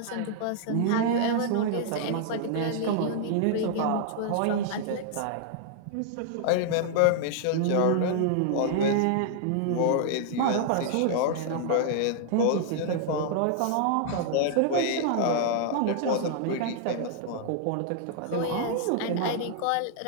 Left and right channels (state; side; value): different; both; correlation -0.01